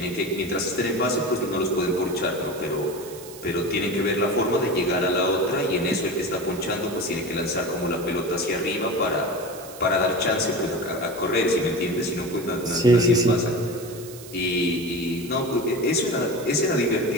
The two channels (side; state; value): right; noise; hiss, 17 dB below the sound